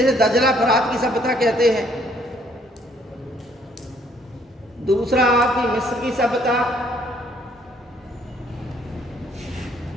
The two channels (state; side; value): normal; both; correlation 0.65